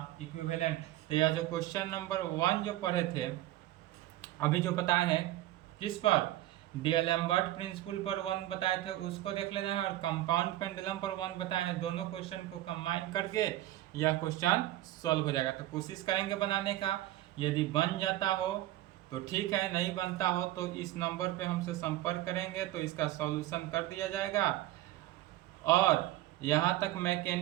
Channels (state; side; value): quieter; left; 15.2 dB